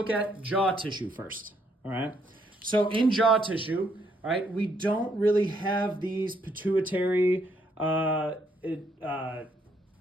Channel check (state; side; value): normal; both; correlation 0.72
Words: at jaw tissue first, all right? So in jaw tissue, all right, we don't really have these pituitary proteins,